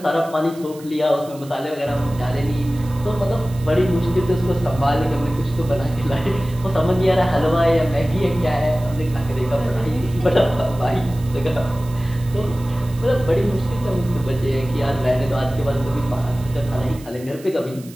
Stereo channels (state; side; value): noise; right; hiss, 21 dB below the sound